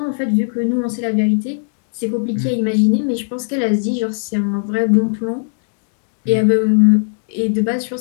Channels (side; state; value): right; silent; digital silence